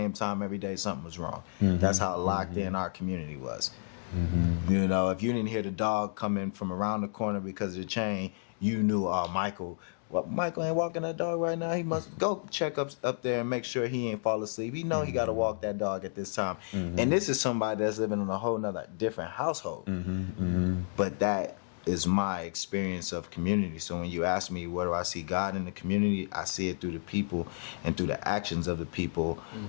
time every day, something was wrong. That's how locked in our community was. You know, if you didn't hear the dog coming from around the corner because of the chain, you knew, Michael ain't walking that dog right now. He must go check up there and make sure he ain't fall asleep. He know he got to walk that dog at this time. And this is somebody that's living in a whole nother different household. But that is my experience of community. So when you ask me, where do I see God in the community? I see it through the people and through the actions of the people,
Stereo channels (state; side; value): silent; right; digital silence